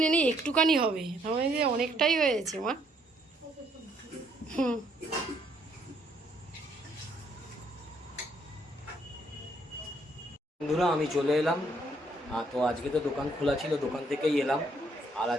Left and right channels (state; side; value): normal; both; correlation 0.69